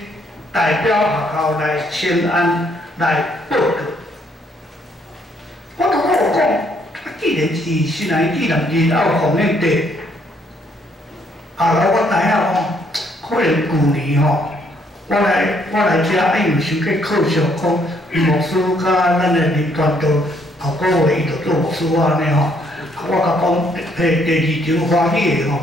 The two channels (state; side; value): normal; both; correlation 0.69